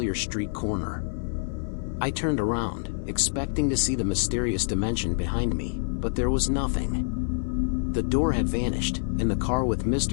street corner. I turned around, expecting to see the mysterious dimension behind me, but there was nothing. The door had vanished, and the car with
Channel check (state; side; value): silent; right; 60 dB below the other